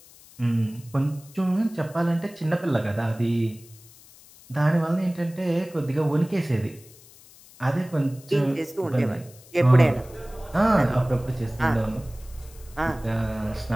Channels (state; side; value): noise; left; hiss, 23 dB below the sound